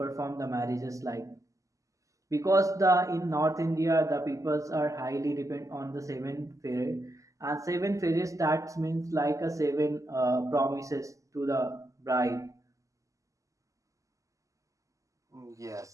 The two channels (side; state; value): left; late; 0.16 ms